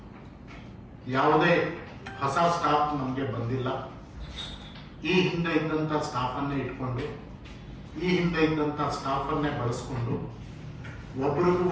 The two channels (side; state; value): both; identical; correlation 1.00